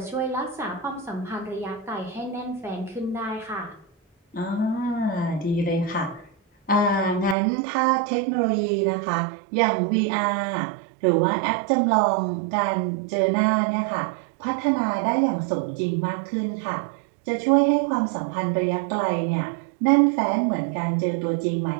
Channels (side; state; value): left; drops out; at 7.4 s